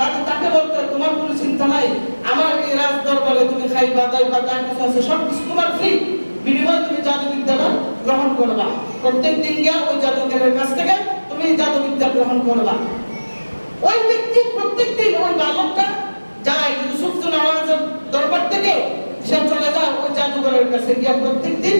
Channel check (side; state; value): both; inverted; correlation -1.00